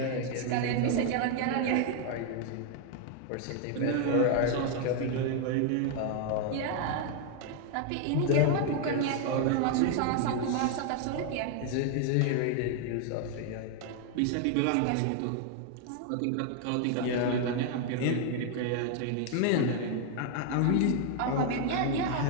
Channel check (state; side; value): different; both; correlation 0.00